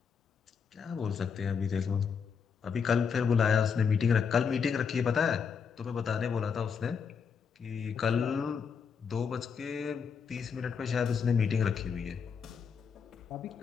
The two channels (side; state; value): right; quieter; 6.3 dB